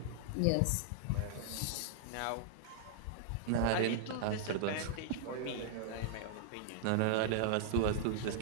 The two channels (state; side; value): different; both; correlation -0.01